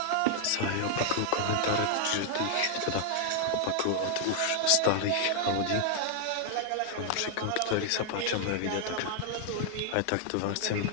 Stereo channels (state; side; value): different; both; correlation 0.00